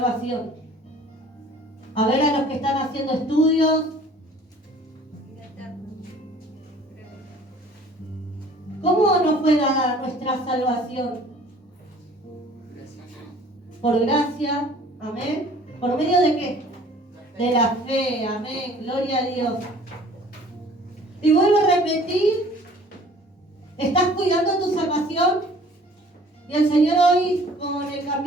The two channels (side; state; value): both; normal; correlation 0.51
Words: A ver, a los que están haciendo estudios. ¿Cómo nos puede dar nuestra salvación? Por gracia, amén. ¿Por medio de qué? De la fe, amén. Gloria a Dios. Y vuelvo a repetir, ¿estás cuidando tu salvación? Y el Señor hoy, con el